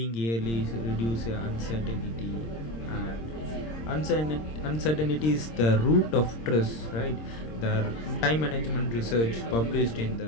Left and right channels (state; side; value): late; right; 26 ms